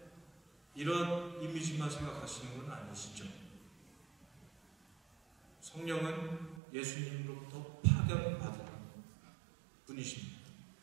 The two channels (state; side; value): drops out; left; at 6.6 s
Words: 이런 이미지만 생각하시는 건 아니시죠? 성령은 예수님으로부터 파견받은 분이십니다.